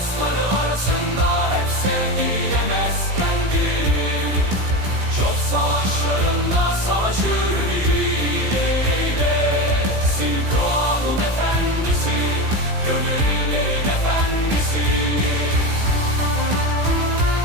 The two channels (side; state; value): left; late; 16 ms